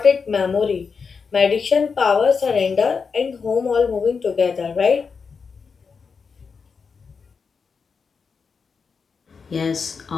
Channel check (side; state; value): right; quieter; 5.4 dB